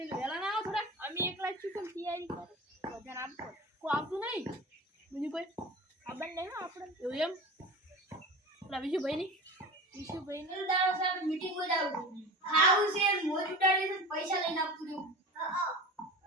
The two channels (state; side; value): normal; both; correlation 0.32